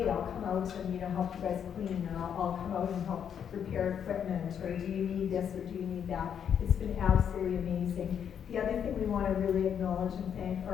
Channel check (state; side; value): quieter; right; 8.3 dB